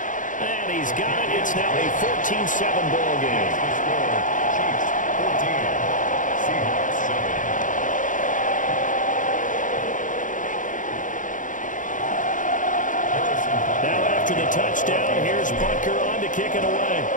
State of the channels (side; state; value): right; late; 0.38 ms